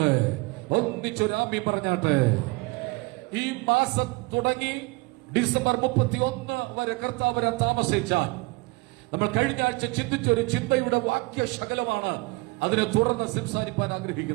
ഒന്നിച്ചൊരാമി പറഞ്ഞാട്ടെ. ഈ മാസം തുടങ്ങി ഡിസംബർ 31 വരെ കർത്താവ് വരാൻ താമസിച്ചാൽ നമ്മൾ കഴിഞ്ഞ ആഴ്ച ചിന്തിച്ചൊരു ചിന്തയുടെ വാക്യശകലമാണ് അതിനെ തുടർന്ന് സംസാരിക്കാൻ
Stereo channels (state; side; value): quieter; left; 24.6 dB